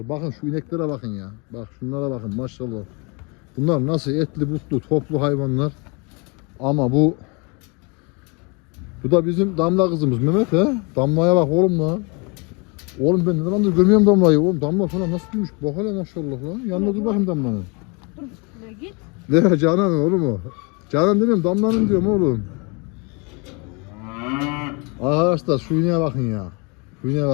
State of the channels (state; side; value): quieter; right; 30.5 dB